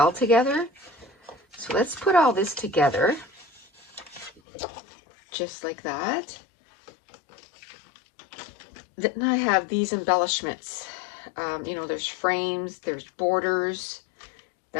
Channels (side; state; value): right; drops out; at 4.4 s